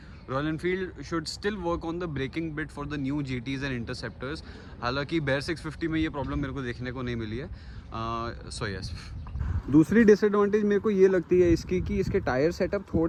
Royal Enfield should still work on the braking bit for the new GTs and interceptors. हालांकि Bear 650 में ये प्रॉब्लम मेरे को देखने को नहीं मिली है. So yes. दूसरी डिसएडवांटेज मेरे को ये लगती है इसकी कि इसके टायर सेटअप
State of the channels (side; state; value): both; identical; correlation 1.00